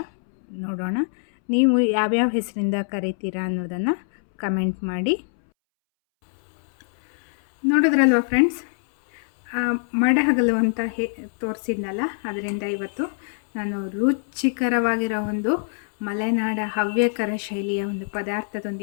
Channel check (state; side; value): silent; right; 63 dB below the other